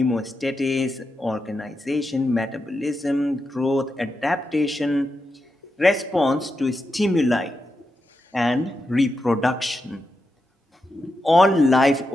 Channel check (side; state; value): both; normal; correlation 0.87